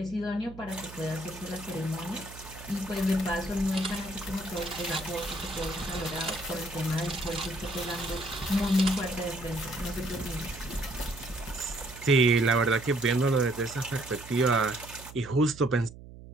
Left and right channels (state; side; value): noise; right; hum, 16 dB below the sound